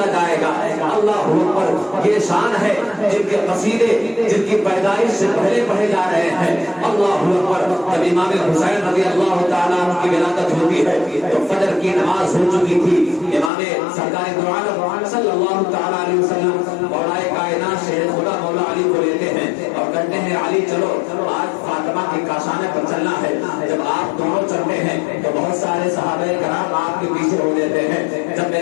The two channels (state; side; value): drops out; right; at 13.5 s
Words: جائے گا۔ اللہ اکبر، یہ شان ہے جن کے قصیدے جن کی پیدائش سے پہلے پڑھے جا رہے ہیں۔ اللہ اکبر، جب امام حسین رضی اللہ تعالیٰ عنہ کی ولادت ہوتی ہے تو فجر کی نماز ہو چکی تھی۔ امام سرکار دو عالم صلی اللہ تعالیٰ علیہ وسلم مولا کائنات شیر خدا مولا علی کو لیتے ہیں اور کہتے ہیں علی چلو آج فاطمہ کی کاشانے پر چلنا ہے۔ جب آپ دونوں چلتے ہیں تو بہت سارے صحابہ کرام آپ کے پیچھے ہو لیتے ہیں۔ جب